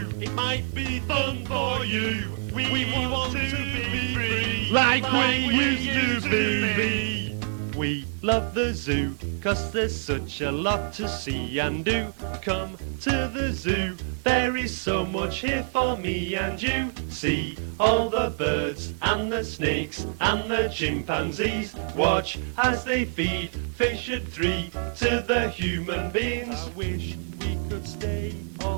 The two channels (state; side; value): silent; left; digital silence